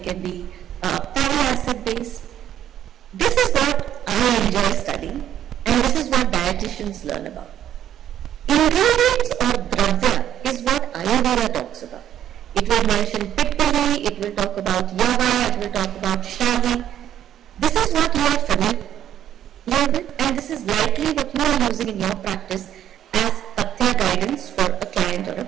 be fatty acid based. This is what I enjoy studying, and this is what dietitians learn about. Ingredients or dravya is what Ayurveda talks about. It will mention pippali, it will talk about yava, it will talk about shavi. This is what you are familiar with, and this is likely what you are using in your practice as pathya guidance for a client or a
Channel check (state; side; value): quieter; left; 10.9 dB